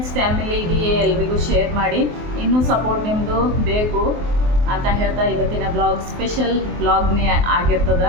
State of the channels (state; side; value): late; left; 24 ms